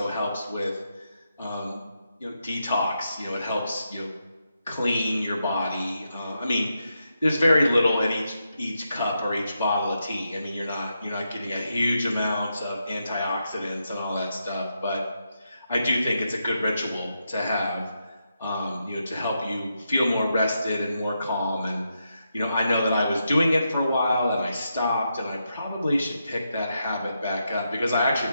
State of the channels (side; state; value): both; inverted; correlation -0.84